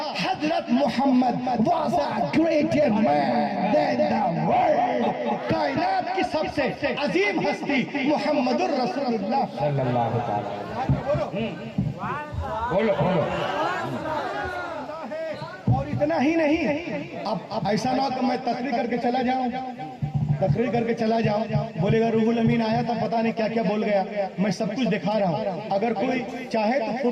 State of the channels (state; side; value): identical; both; correlation 1.00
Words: हजरत Mohammad was a greater man than the world. कायनात की सबसे अजीम हस्ती मुहम्मदुर रसूलुल्लाह सल्लल्लाहु अलैहि वसल्लम। बोलो बोलो। और इतना ही नहीं, अब ऐसा ना हो कि मैं तकरीर करके चला जाऊं, बोलेगा रूहुल अमीन आया था पता नहीं क्या क्या बोल गया। मैं सब कुछ दिखा रहा हूं, अगर कोई चाहे तो